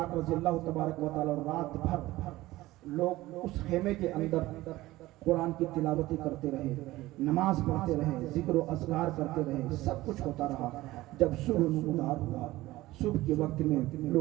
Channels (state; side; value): quieter; left; 17.7 dB